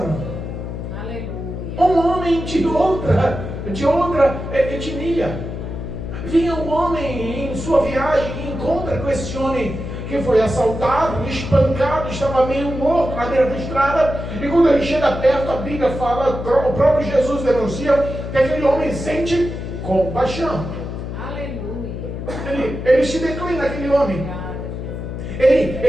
um homem de outra etnia, vinha um homem em sua viagem e encontra com esse homem que foi assaltado, espancado, estava meio morto na beira da estrada. E quando ele chega perto, a Bíblia fala, o próprio Jesus denuncia que aquele homem sente compaixão. Aleluia. Ele se declina, aquele homem.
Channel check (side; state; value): left; noise; hum, 6 dB below the sound